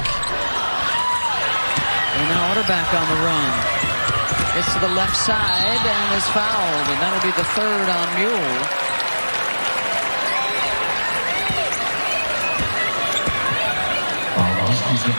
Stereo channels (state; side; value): inverted; both; correlation -1.00